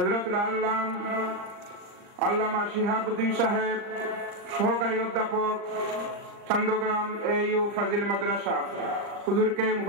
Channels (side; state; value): left; late; 39 ms